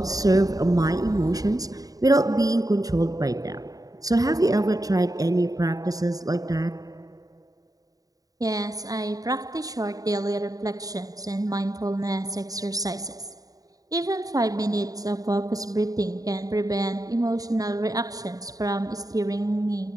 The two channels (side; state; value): left; late; 0.18 ms